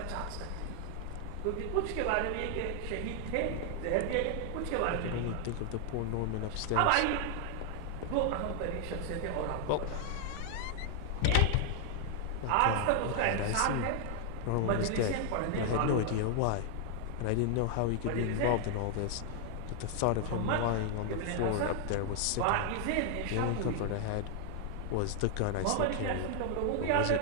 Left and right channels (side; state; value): both; different; correlation 0.00